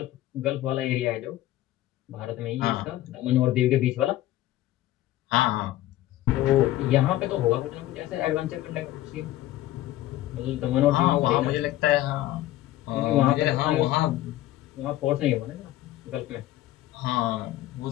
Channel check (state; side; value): quieter; right; 14.8 dB